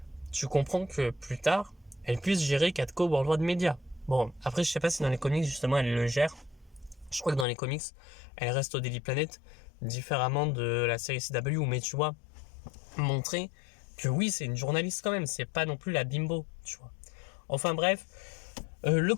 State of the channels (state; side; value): drops out; right; at 7.5 s